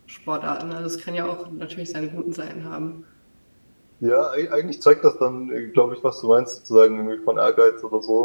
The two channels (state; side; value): inverted; both; correlation -1.00